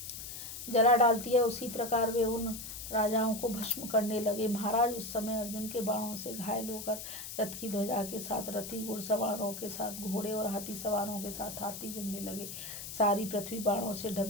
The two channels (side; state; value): left; noise; hiss, 9 dB below the sound